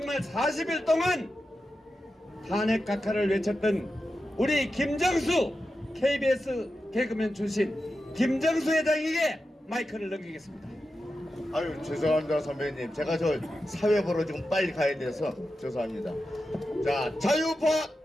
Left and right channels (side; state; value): both; normal; correlation 0.90